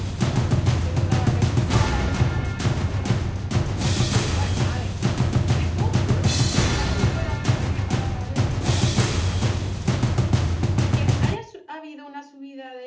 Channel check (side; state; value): both; identical; correlation 1.00